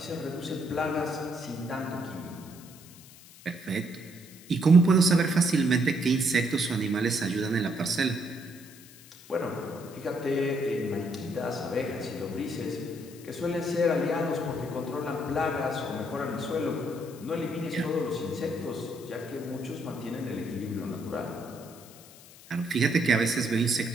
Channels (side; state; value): left; noise; hiss, 21 dB below the sound